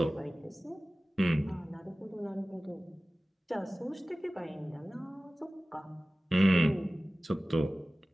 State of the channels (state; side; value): normal; both; correlation 0.97